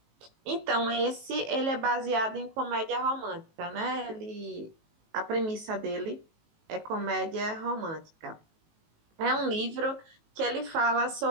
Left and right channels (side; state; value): left; late; 19 ms